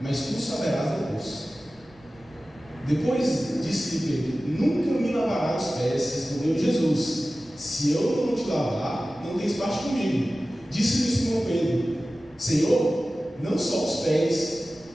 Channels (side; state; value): left; noise; rumble, 29 dB below the sound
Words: tu saberás depois. Depois disse-lhe Pedro: nunca me lavarás os pés. Respondeu Jesus: se eu não te lavar, não tens parte comigo. Disse-lhe Simão Pedro: Senhor, não só os pés,